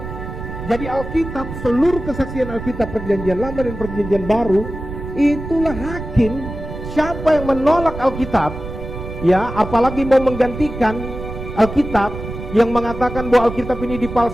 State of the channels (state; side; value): noise; right; rumble, 9 dB below the sound